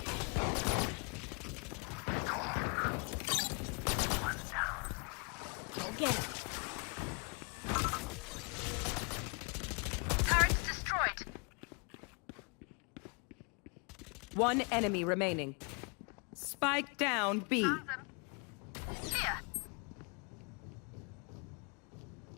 Go get him. Turrets destroyed. One enemy remaining. Spike down B. Found them. Here.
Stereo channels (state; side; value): quieter; right; 35.7 dB